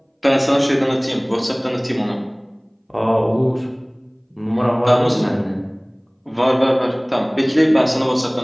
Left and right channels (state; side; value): identical; both; correlation 1.00